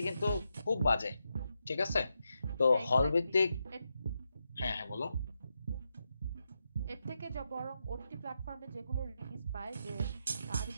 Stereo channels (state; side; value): inverted; both; correlation -0.85